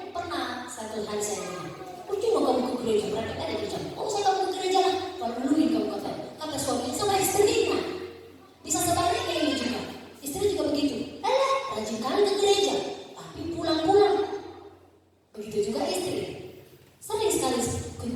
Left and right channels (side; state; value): both; identical; correlation 1.00